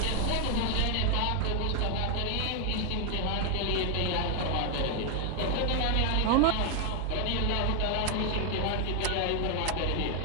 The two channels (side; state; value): both; different; correlation 0.00